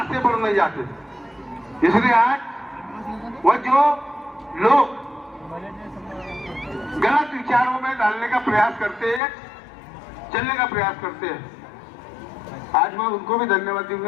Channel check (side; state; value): right; drops out; at 9.2 s